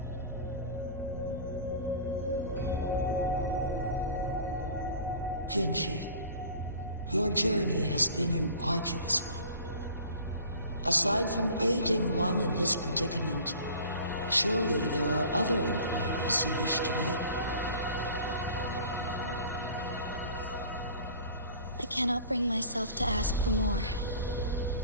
Jinzhou, your journey has been an arduous one. Aside from aiding one in this predicament, surely there are other inquiries you wish to make. I cannot bring myself to ask for more.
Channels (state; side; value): inverted; both; correlation -0.44